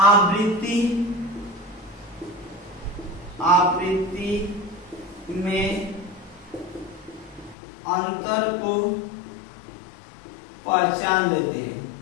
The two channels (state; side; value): drops out; right; at 7.6 s